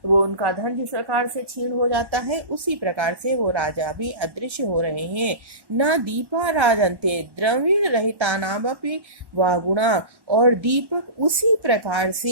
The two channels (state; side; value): late; left; 1.1 ms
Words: उनका धन जिस प्रकार से क्षीण हो जाता है उसी प्रकार से वो राजा भी अदृश्य हो रहे हैं। न दीपा राजन्ते द्रविण रहिता नामपि वा गुणा, और दीपक उसी प्रकार